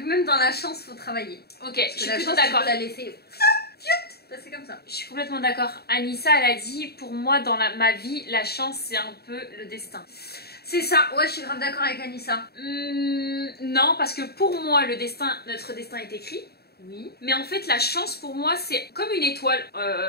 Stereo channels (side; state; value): right; late; 0.46 ms